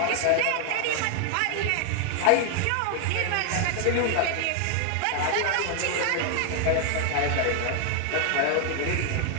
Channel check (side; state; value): both; different; correlation 0.00